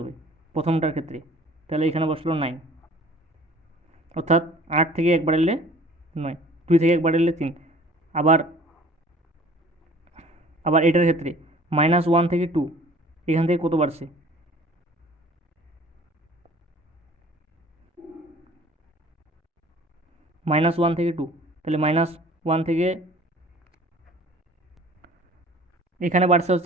প্রথমটার ক্ষেত্রে। তাহলে এখানে বসলো 9। অর্থাৎ 8 থেকে 1 বাড়ালে 9, 2 থেকে 1 বাড়ালে 3। আবার আবার এটার ক্ষেত্রে -1 থেকে 2, এখান থেকে কত বাড়ছে? -1 থেকে 2, তাহলে -1 থেকে এখানে বাড়ছে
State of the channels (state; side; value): normal; both; correlation 0.49